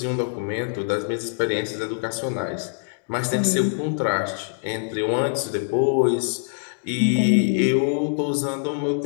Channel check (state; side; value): silent; right; digital silence